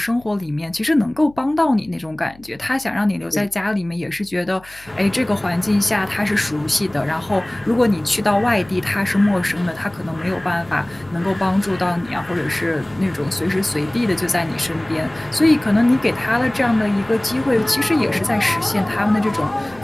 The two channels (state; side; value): noise; left; hum, 25 dB below the sound